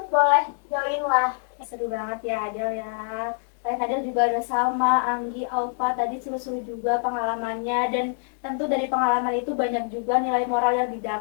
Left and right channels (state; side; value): silent; right; 62 dB below the other